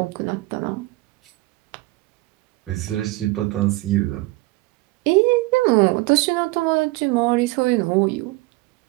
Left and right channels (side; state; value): left; quieter; 21.5 dB